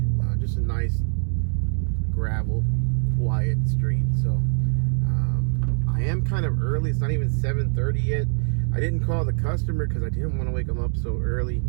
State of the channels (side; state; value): left; silent; 63 dB below the other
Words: Just a nice gravel, quiet street. So I am kind of early. It's not even 7:30 yet. I didn't call the customer because I didn't want to wake them up so early.